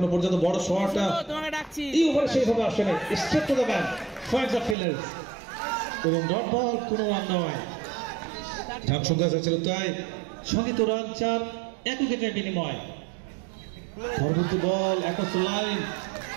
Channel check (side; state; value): left; drops out; at 4.8 s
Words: পর্যন্ত বড় শটটা এই ওভারে সেইভাবে আসেনি, straight to the man, finds the fielders এবং ডট বল, কোনো রান নয়। রান সংখ্যা ছিল তাই, সঙ্গীত রান 4, 1 উইকেটের বিনিময়। পরবর্তী বল একশ লাইন,